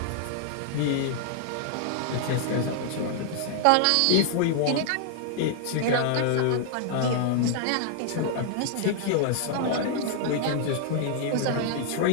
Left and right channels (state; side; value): different; both; correlation -0.01